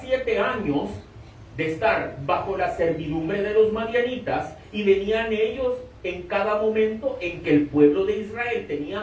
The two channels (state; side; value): identical; both; correlation 1.00